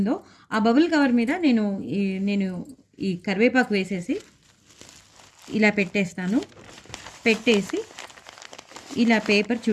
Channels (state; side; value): identical; both; correlation 1.00